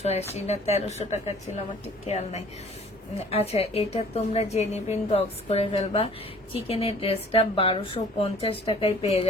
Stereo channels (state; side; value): normal; both; correlation 0.52